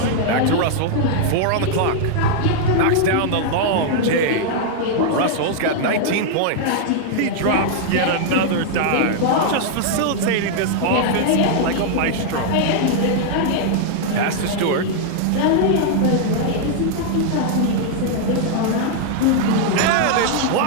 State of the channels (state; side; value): different; both; correlation -0.01